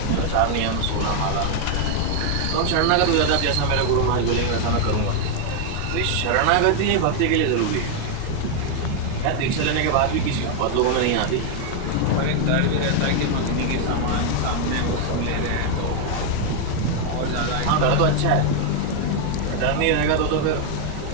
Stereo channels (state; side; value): different; both; correlation 0.00